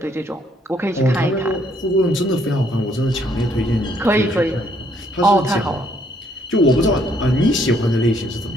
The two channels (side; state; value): both; normal; correlation 0.68